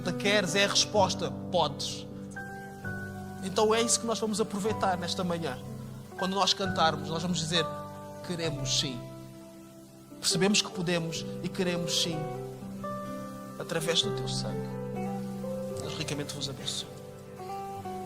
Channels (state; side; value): identical; both; correlation 1.00